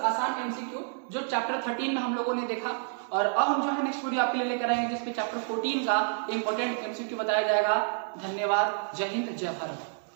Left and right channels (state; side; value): silent; left; digital silence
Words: आसान एमसीक्यू जो चैप्टर 13 में हम लोगों ने देखा। और अब हम जो है नेक्स्ट वीडियो आपके लिए लेकर आएंगे जिसमें चैप्टर 14 का इंपॉर्टेंट एमसीक्यू बताया जाएगा। धन्यवाद, जय हिंद, जय भारत।